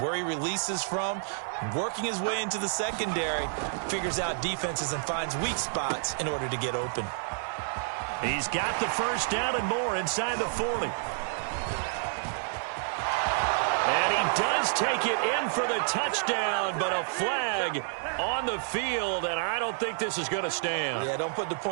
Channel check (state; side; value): silent; left; digital silence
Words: where he releases from. Working his way into the secondary, figures out defenses and finds weak spots in order to get open. He's got the first down and more inside the 40. And he does take it in for the touchdown, but a flag on the field, and I don't think this is going to stand. Yeah, don't put the